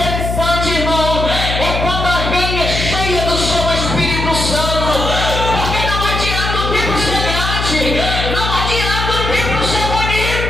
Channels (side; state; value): left; noise; hum, 3 dB below the sound